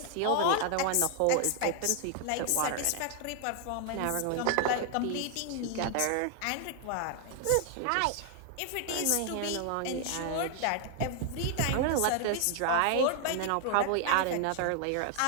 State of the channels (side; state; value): both; different; correlation 0.00